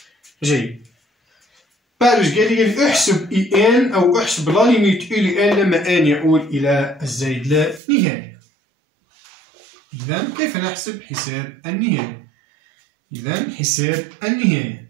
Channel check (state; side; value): drops out; left; at 7.8 s